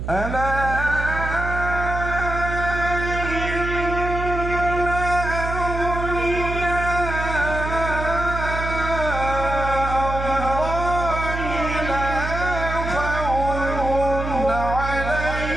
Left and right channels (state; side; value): noise; right; hum, 5 dB below the sound